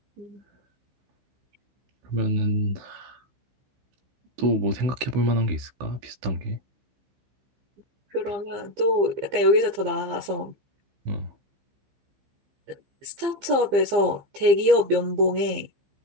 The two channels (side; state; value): left; late; 15 ms